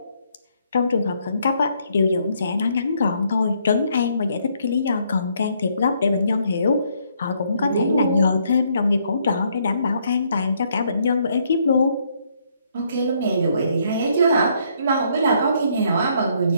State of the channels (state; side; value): inverted; both; correlation -0.70